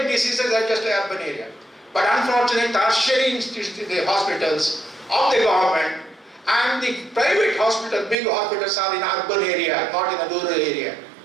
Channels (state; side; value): drops out; left; at 8.2 s